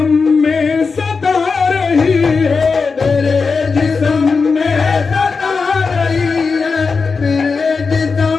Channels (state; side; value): quieter; right; 4.8 dB